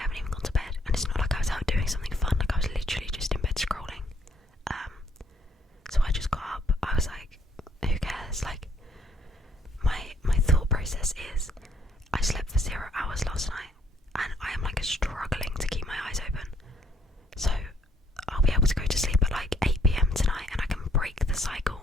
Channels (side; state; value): both; normal; correlation 0.67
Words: even gone to bed, and it's not like I was out doing something fun. Like, I was literally just in bed scrolling. So I just got up. I was like, who cares? Like, my thought process is, I slept for 0 hours last night, and I am like struggling to keep my eyes open. So I'll be able to go to sleep at like 8 p.m. tonight, and I can break the